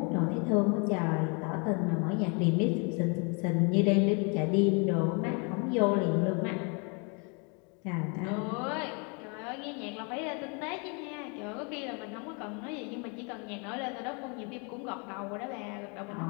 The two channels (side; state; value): right; quieter; 34.4 dB